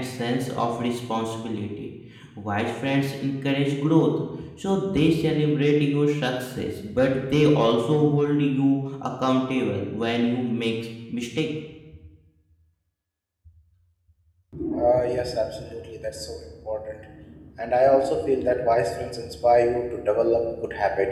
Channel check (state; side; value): identical; both; correlation 1.00